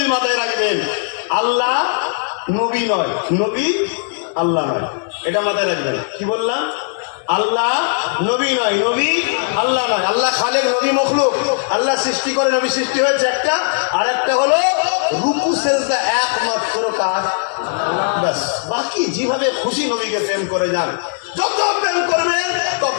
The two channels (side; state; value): right; silent; digital silence